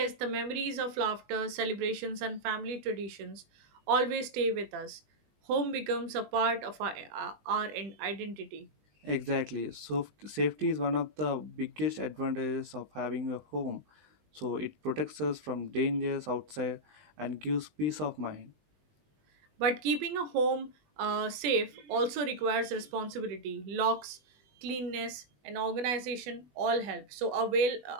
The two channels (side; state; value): left; late; 20 ms